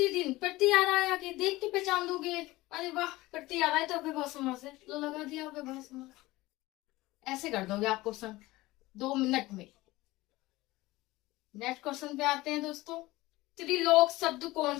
प्रति आ रहा है, आगे देख के पहचान दोगे। अरे वाह, प्रति आ रहा है तो अव्ययभाव समास है, लो लगा दिया अव्ययभाव समास। ऐसे कर दोगे आप क्वेश्चन 2 मिनट में। नेक्स्ट क्वेश्चन पे आते हैं दोस्तों। त्रिलोक शब्द कौन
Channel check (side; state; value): right; quieter; 19.3 dB